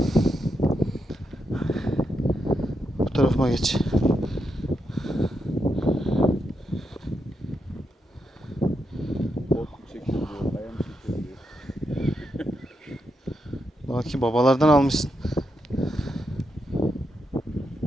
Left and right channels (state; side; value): normal; both; correlation 0.83